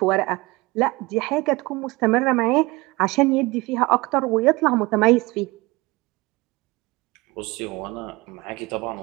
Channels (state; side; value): quieter; left; 22.8 dB